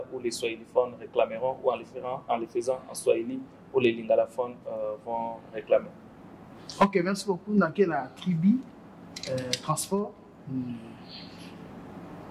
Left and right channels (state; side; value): identical; both; correlation 1.00